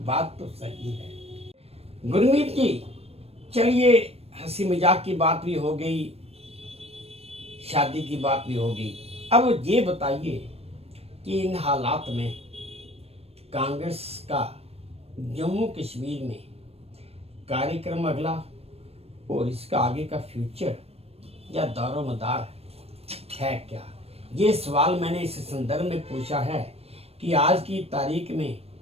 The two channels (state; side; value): late; left; 0.29 ms